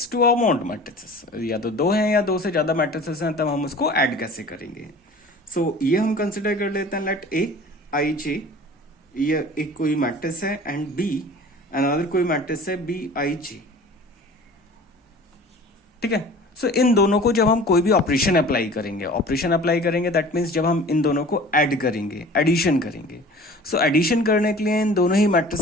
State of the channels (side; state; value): both; normal; correlation 0.43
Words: two amount matrices, या तो दो हैं या दो से ज्यादा मैट्रिसेस हैं, तब हम उसको ऐड कैसे करेंगे। सो ये हम कंसिडर कर लेते हैं लेट ए आई जे, ये एक कोई मैट्रिक्स है, एंड बी अनदर कोई मैट्रिक्स है बी आई जे। ठीक है। सो इन दोनों को जब हम कोई भी ऑपरेशन अप्लाई करेंगे दैट मीन्स जब हम इन दोनों को ऐड करेंगे, एडिशन करेंगे। सो एडिशन करने के लिए इन दोनों ही